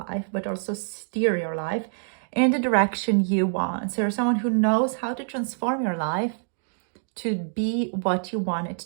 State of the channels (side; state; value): left; silent; digital silence